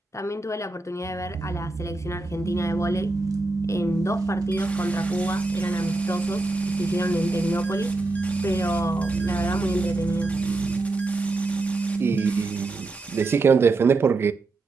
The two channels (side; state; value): left; quieter; 3.3 dB